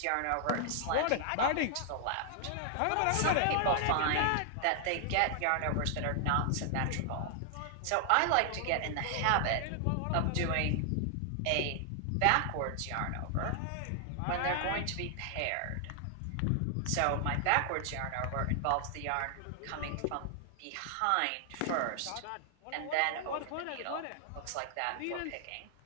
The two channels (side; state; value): both; different; correlation 0.00